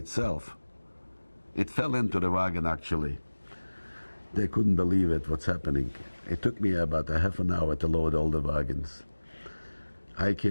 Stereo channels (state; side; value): inverted; both; correlation -1.00